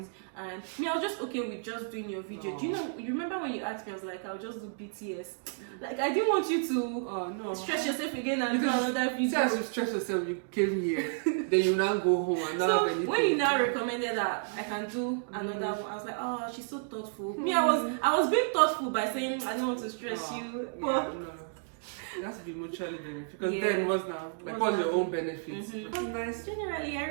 And me, I was just okay with just doing your video. Do you know? You remember when you asked me? I was like, I'll just do BTS. Like I didn't want you to stress yourself again and do another video. See, as you stress yourself, you came here. Then you now go home and not have anything. When you now recommended that I can do another one, I was like, oh, she's so thoughtful. Me, I was being thoughtful by saying I don't want to stress you. But it has to be mutually beneficial because then what's now like what's your own benefits? Nice. Generally, I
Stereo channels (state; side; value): silent; left; digital silence